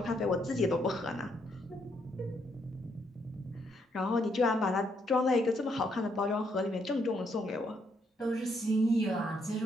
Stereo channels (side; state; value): both; normal; correlation 0.74